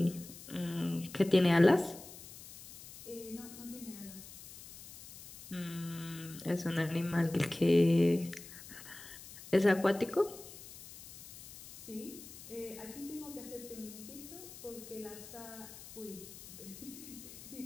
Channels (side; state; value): left; noise; hiss, 15 dB below the sound